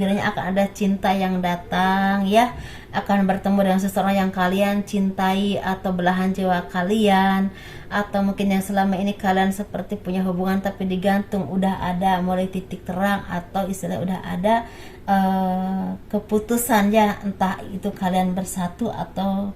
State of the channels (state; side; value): identical; both; correlation 1.00